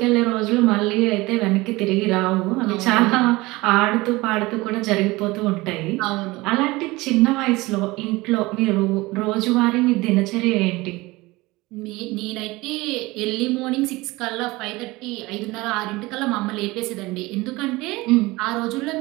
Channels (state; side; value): quieter; left; 21.4 dB